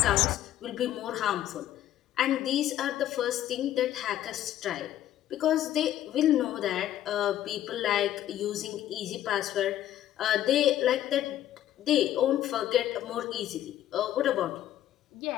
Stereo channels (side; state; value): right; quieter; 12.4 dB